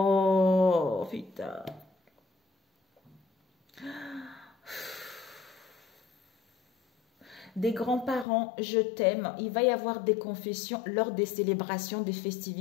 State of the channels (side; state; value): right; drops out; at 8.2 s